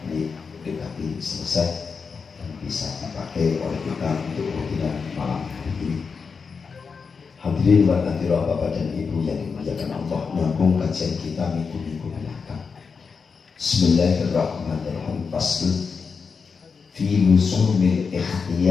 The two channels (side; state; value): right; quieter; 5.4 dB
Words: ini dekati selesai dan bisa dipakai oleh kita untuk rutinan malam hari ini. Hadirin wa hadirat Bapak dan Ibu yang dimuliakan Allah, menyambung kajian kita minggu-minggu belakang. Bismillahirrahmanirrahim. Fasl fi luzumil